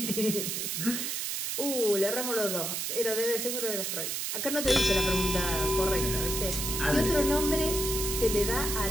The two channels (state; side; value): noise; right; hiss, 2 dB below the sound